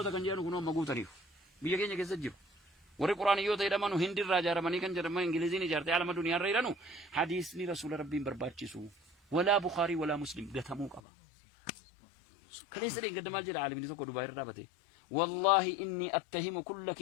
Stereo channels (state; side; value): drops out; right; at 11.0 s